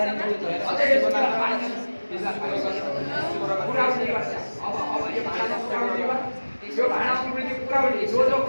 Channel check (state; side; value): inverted; both; correlation -1.00